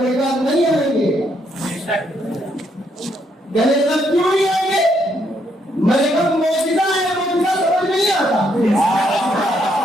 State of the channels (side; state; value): both; normal; correlation 0.74